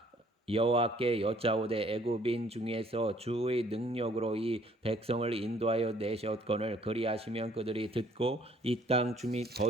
여호와께 여짜오되 애굽인 중에서 주의 능력으로 이 백성을 인도하여 내셨거늘 그리하시면 그들이 듣고 이 땅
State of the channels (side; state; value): both; normal; correlation 0.61